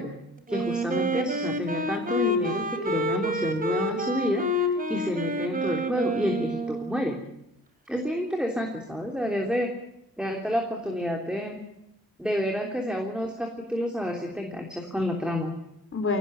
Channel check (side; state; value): both; normal; correlation 0.54